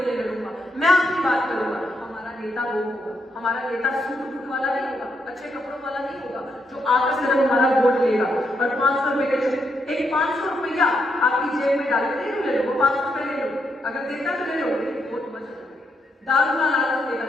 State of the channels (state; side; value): normal; both; correlation 0.79